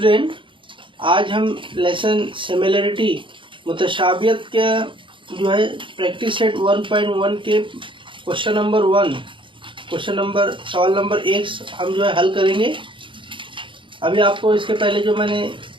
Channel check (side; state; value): left; late; 0.24 ms